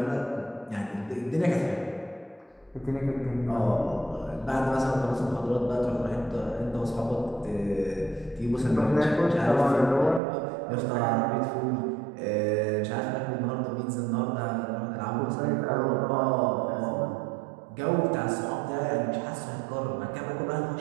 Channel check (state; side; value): drops out; left; at 10.2 s